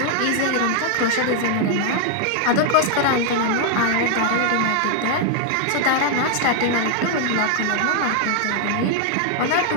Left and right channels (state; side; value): different; both; correlation 0.00